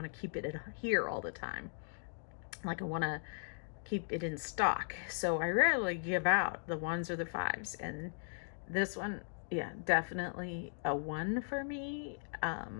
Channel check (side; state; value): right; silent; digital silence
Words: to keep it here all the time. Like I want to keep it in stock. So I rarely give out the 1s or the 5s. And this one, yeah, definitely a 1 for me.